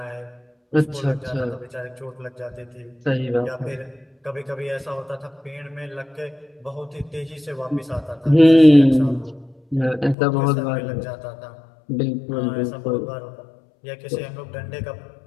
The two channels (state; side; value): drops out; right; at 10.2 s